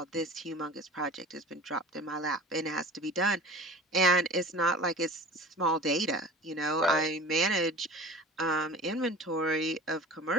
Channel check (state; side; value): normal; both; correlation 0.40